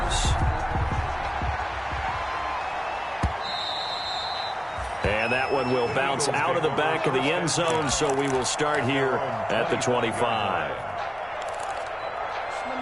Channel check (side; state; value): both; identical; correlation 1.00